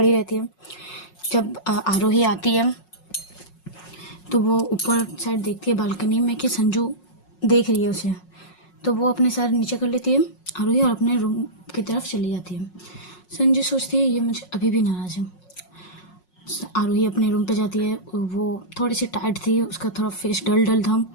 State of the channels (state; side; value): late; right; 5.5 ms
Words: रहती है। जब आरोही आती है तो वो ऊपर साइड देखती है बालकनी में कि संजू देख रही है उसे, तो वो अपने सर नीचे कर लेती है आरोही और अपने रूम की तरफ चली जाती है। संजू सोचती है ये मुझे अभी भी नाराज़ है। आरोही अपने रूम पे जाती है, वो थोड़ी सी टायर्ड थी, उसका थोड़ा फेस डल था।